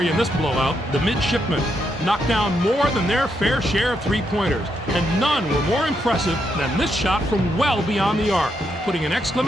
in this blowout. The Midshipmen knocked down more than their fair share of three-pointers, and none were more impressive than this shot from well beyond the arc, putting an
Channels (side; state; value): both; normal; correlation 0.80